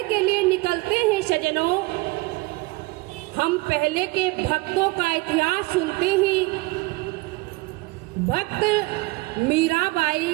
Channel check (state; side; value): quieter; left; 23.3 dB